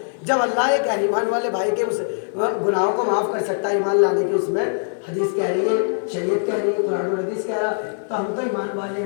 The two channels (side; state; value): right; silent; digital silence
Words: جب اللہ ایک ایمان والے بھائی کے اس گناہوں کو معاف کر سکتا ہے ایمان لانے کی، اس میں حدیث کہہ رہی ہے، شریعت کہہ رہی ہے، قرآن اور حدیث کہہ رہا ہے، تو ہم تو ایمان والے